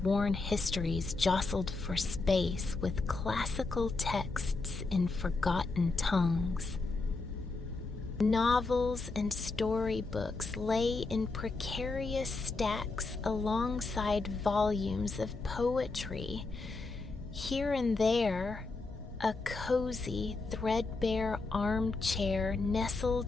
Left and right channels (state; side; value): quieter; right; 3.7 dB